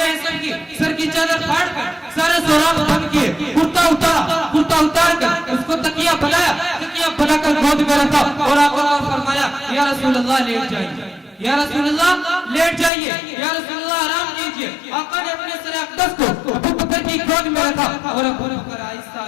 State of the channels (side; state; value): right; drops out; at 12.9 s